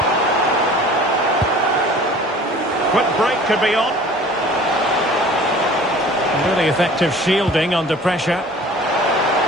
Quick break could be on. Really effective shielding under pressure.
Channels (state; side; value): normal; both; correlation 0.46